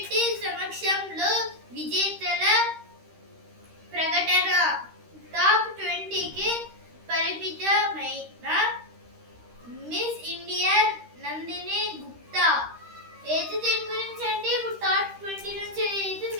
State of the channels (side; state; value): left; late; 13 ms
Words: సమక్షంలో విజేతల ప్రకటన. టాప్ 20కి పరిమితమైన మిస్ ఇండియా నందిని గుప్తా. అయితే దీని గురించి అంటే ఇప్పుడు టాప్ 20 నుంచి అయితే